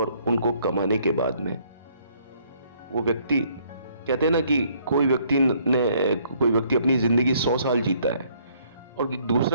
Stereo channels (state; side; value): inverted; both; correlation -0.65